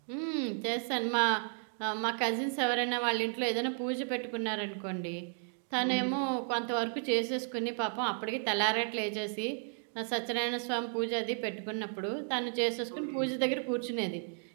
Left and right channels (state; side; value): silent; left; 55 dB below the other